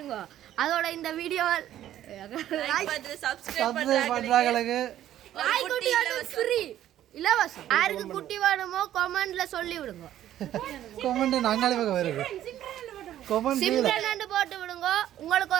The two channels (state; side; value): quieter; left; 12.2 dB